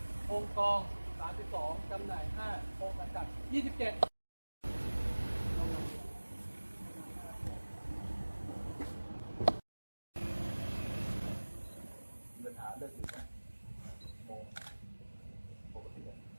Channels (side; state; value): both; inverted; correlation -1.00